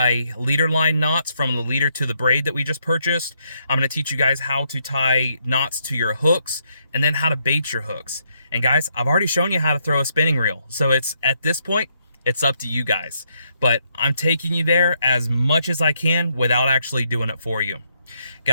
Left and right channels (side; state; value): both; inverted; correlation -0.75